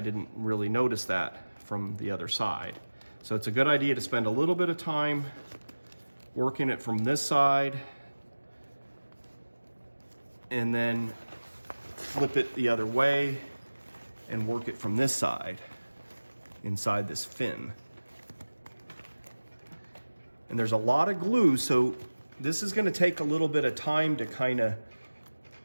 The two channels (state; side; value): inverted; both; correlation -1.00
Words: didn't really notice that from the other side. So it's a good idea to spend a little bit of time working it from this side and then flip it the other way and work it from this side inside this fin. And there's a lot of glue, so this is gonna take a little bit of time to kind of